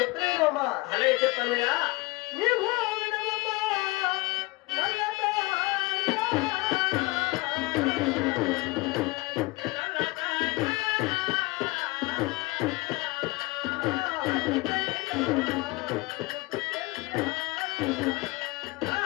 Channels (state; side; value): quieter; right; 23.3 dB